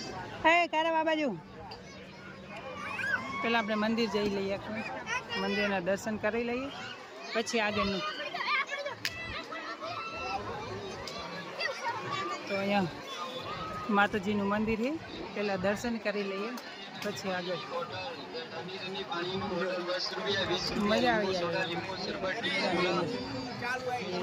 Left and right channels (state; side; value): identical; both; correlation 1.00